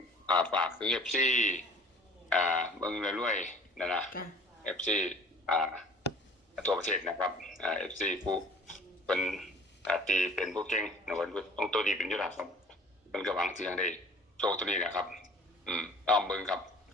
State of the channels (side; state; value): both; normal; correlation 0.49